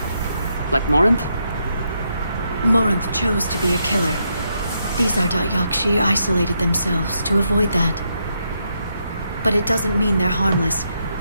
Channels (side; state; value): both; inverted; correlation -0.80